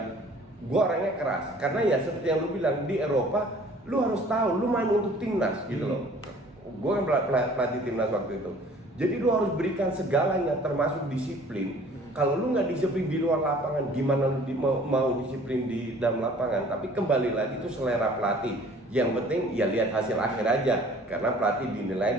gue orangnya keras. Karena ya seperti yang lu bilang, di Eropa lu harus tahu lu main untuk timnas gitu loh. Gue kan pelatih timnas waktu itu. Jadi lu harus berikan segalanya termasuk disiplin. Kalau lu nggak disiplin di luar lapangan, gimana lu mau disiplin di dalam lapangan? Tapi kembali lagi itu selera pelatih. Yang penting ya lihat hasil akhir aja, karena pelatih dinilai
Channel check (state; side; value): normal; both; correlation 0.52